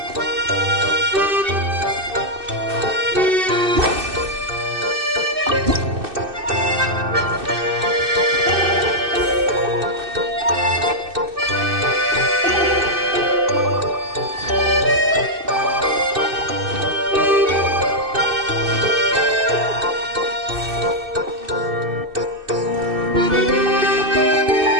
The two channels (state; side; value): late; left; 2.6 ms